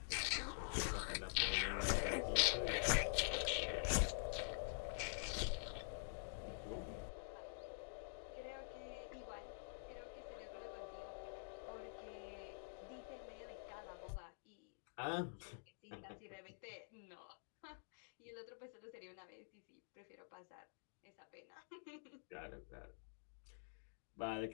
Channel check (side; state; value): right; silent; digital silence